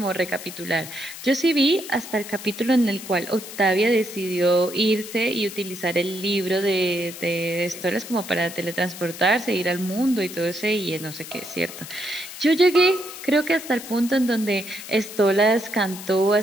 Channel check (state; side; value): noise; left; hiss, 12 dB below the sound